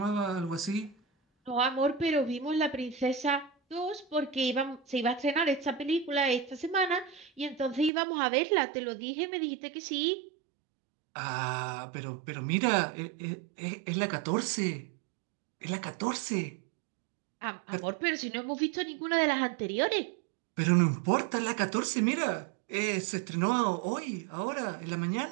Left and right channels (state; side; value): drops out; left; at 7.9 s